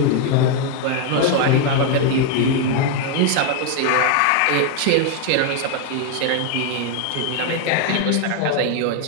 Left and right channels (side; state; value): both; different; correlation 0.01